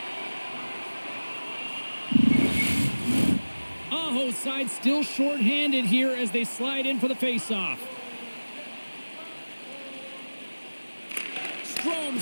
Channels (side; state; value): both; inverted; correlation -1.00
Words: Aho's side still shorthanded here as they slide in for the faceoff.